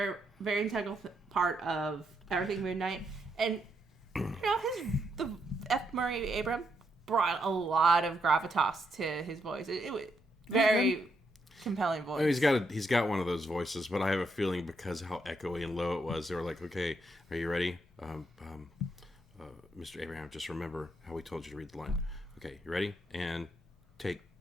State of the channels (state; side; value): normal; both; correlation 0.78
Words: very integral part of everything Moon Knight. And, the F. Murray Abraham brought a lot of gravitas to his voice. It was very compelling voice. He's got one of those voices, but I have a feeling because of how echoey and low it was, they were like, "Okay, are you ready, Mr. Abraham? Just remember how we told you to read the line. Okay, you ready? And take